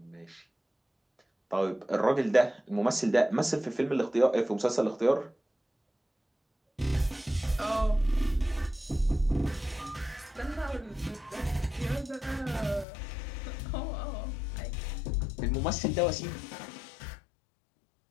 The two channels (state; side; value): drops out; right; at 12.9 s